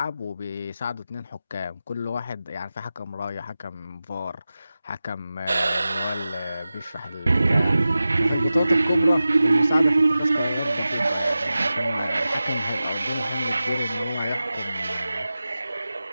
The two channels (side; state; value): both; inverted; correlation -0.94